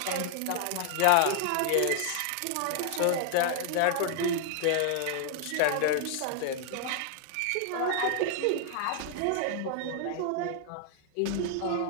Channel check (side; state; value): both; different; correlation 0.00